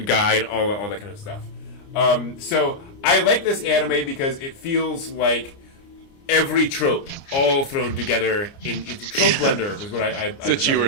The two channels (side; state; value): right; late; 29 ms